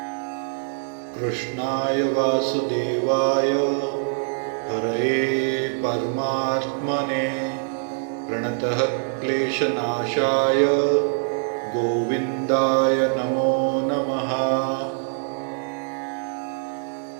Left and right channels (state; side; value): silent; left; 62 dB below the other